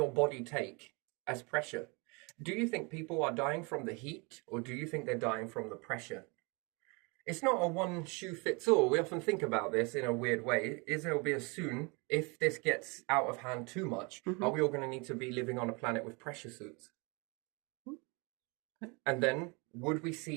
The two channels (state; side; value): quieter; left; 29.7 dB